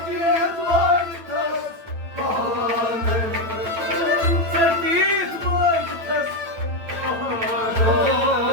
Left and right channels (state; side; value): late; left; 9.0 ms